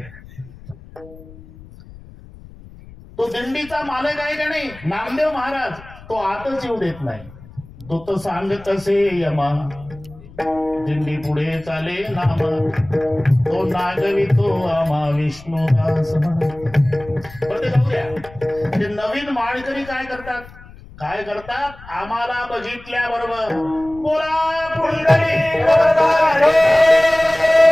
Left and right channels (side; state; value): left; noise; rumble, 20 dB below the sound